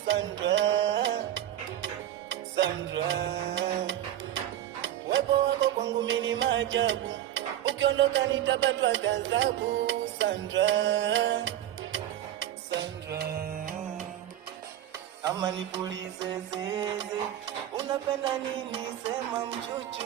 Sandra, Sandra, wepo wako kwangu mimi ni maajabu, ukiondoka nitapatwa ghadhabu. Sandra, Sandra, ama nipulize zeze, unapenda nini? Sema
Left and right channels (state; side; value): quieter; left; 12.1 dB